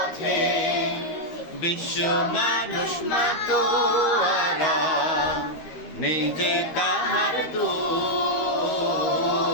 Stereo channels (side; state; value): right; late; 13 ms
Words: বিশ্ব মানুষ মাতোয়ারা নিজে তাহার তুল